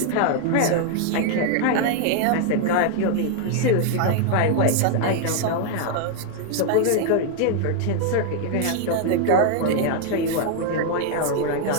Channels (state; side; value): different; both; correlation 0.00